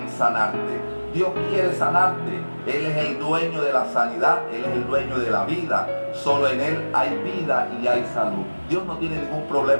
sanarte. Dios quiere sanarte. Él es el dueño de la sanidad, Él es el dueño de la vida. Solo en Él hay vida y hay salud. Dios no tiene ningún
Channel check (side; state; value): both; inverted; correlation -1.00